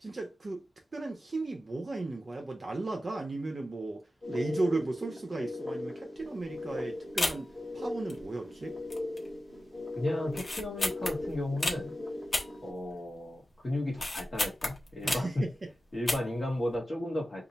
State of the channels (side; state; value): both; normal; correlation 0.93